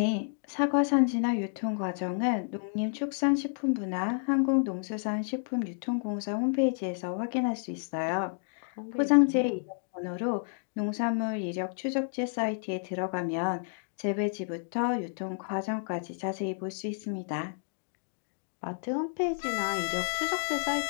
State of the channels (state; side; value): silent; right; digital silence